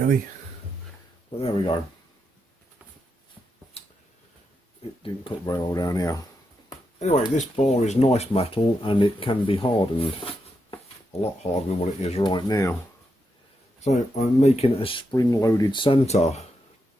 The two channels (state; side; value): normal; both; correlation 0.84